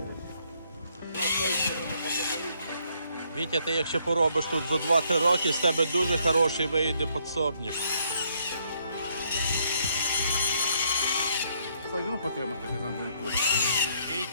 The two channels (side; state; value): both; inverted; correlation -0.70